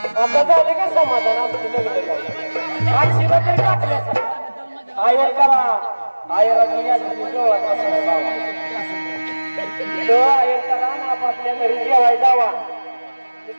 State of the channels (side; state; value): both; inverted; correlation -1.00